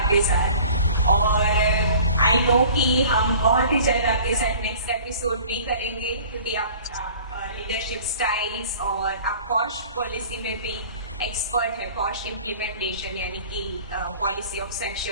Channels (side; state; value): both; inverted; correlation -0.46